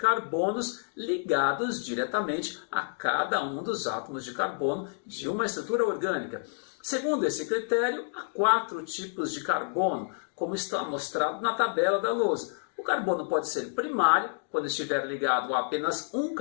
ligados diretamente a cada um dos átomos de carbono de uma estrutura orgânica. Segundo esse critério, há 4 tipos de carbono, como está mostrado na tabela da lousa. O carbono pode ser primário, quando estiver ligado a apenas um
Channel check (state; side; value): silent; right; digital silence